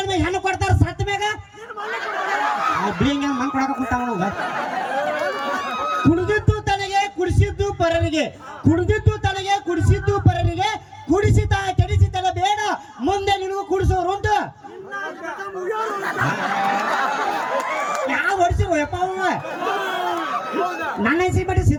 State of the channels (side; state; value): both; identical; correlation 1.00